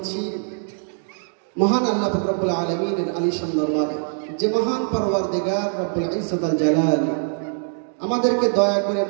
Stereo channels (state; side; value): silent; left; digital silence